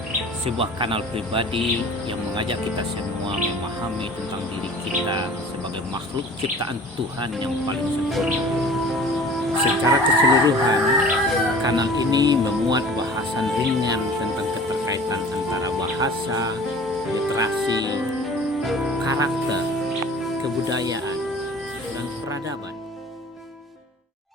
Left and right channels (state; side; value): normal; both; correlation 0.44